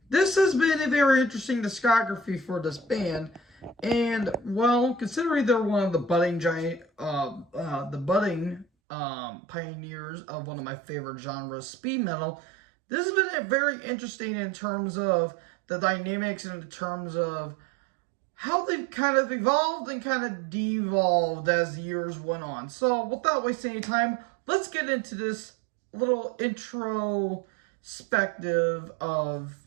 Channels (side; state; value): left; drops out; at 8.7 s